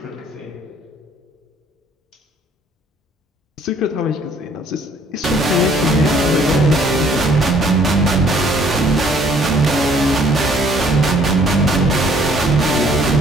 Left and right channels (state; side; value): normal; both; correlation 0.60